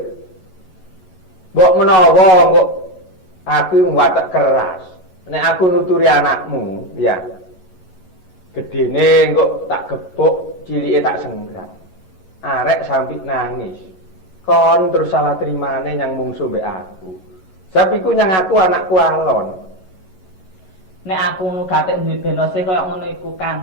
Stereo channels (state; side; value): late; right; 11 ms